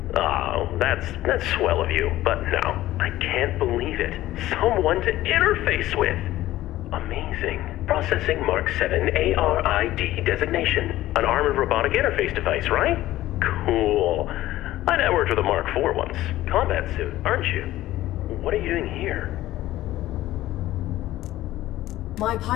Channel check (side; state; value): right; quieter; 15.3 dB